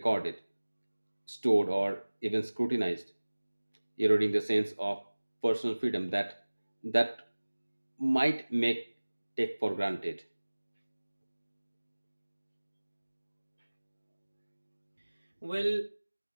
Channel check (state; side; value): inverted; both; correlation -1.00